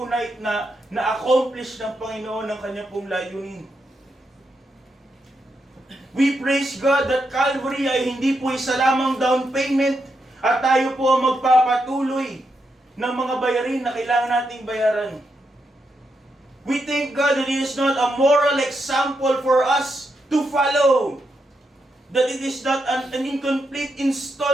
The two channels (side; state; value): both; normal; correlation 0.83